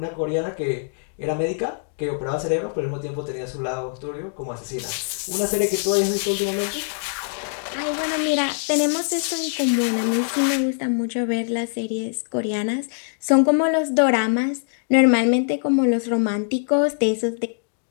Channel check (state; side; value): silent; right; digital silence